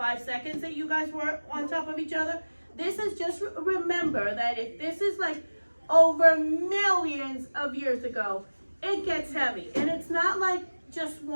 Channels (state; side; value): inverted; both; correlation -1.00